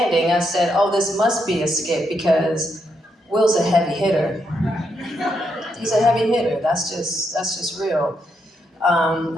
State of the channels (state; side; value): normal; both; correlation 0.79